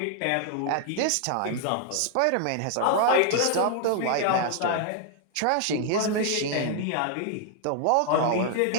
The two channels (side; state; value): both; different; correlation 0.00